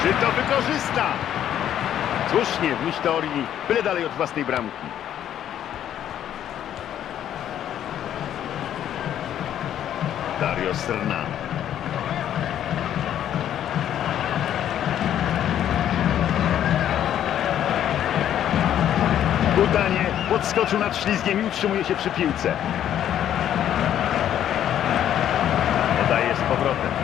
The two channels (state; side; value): quieter; right; 10.7 dB